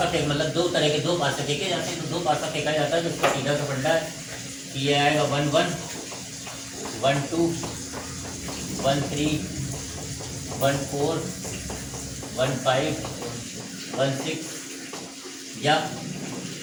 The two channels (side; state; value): both; identical; correlation 1.00